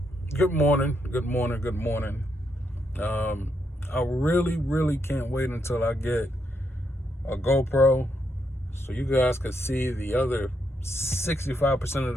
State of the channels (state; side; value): normal; both; correlation 0.79